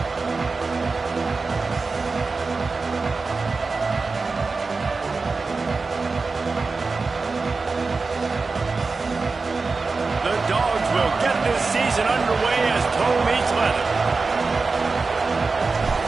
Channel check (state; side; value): quieter; left; 4.1 dB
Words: Season underway as toe meets leather.